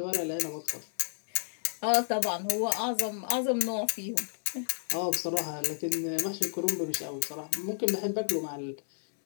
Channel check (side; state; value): right; silent; digital silence